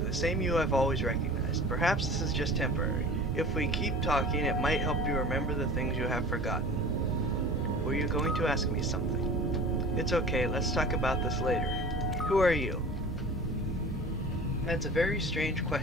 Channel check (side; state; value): both; normal; correlation 0.40